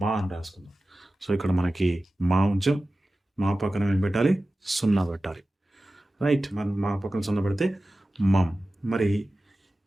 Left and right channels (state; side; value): normal; both; correlation 0.95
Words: మా అని రాసుకుందాం. సో ఇక్కడ మనకి మా ఉంచాం. మా పక్కన ఏం పెట్టాలి? 0 పెట్టాలి. రైట్. మనం మా పక్కన 0 పెడితే మమ్. మరి